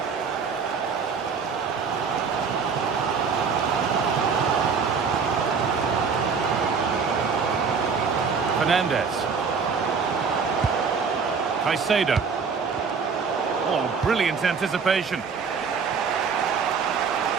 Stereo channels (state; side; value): quieter; left; 5.6 dB